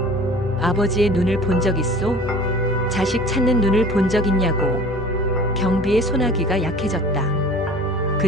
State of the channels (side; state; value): both; normal; correlation 0.45